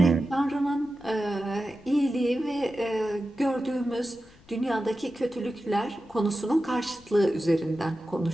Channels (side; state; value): left; noise; rumble, 27 dB below the sound